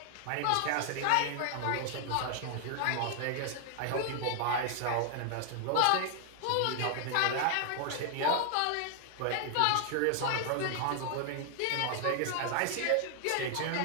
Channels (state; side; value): different; both; correlation 0.00